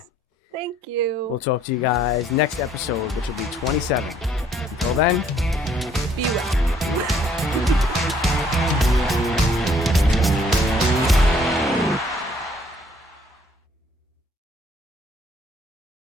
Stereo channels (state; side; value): normal; both; correlation 0.62